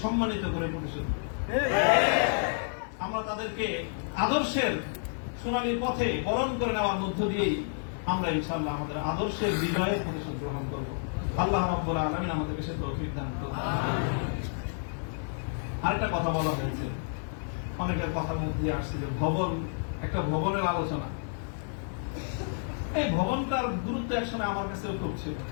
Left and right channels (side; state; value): right; silent; digital silence